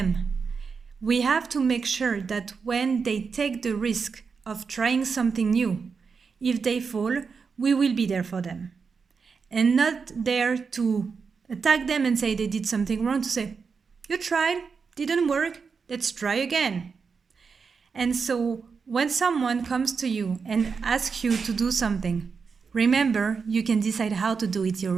We have to make sure that when they take the risk of trying something new, if they fall, we will be there for them. And not there to attack them and say they did something wrong, to say, you tried, didn't work, let's try again. And so when someone comes to you and asks you to do something, remember, you can decide how to do it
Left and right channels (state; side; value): quieter; left; 5.4 dB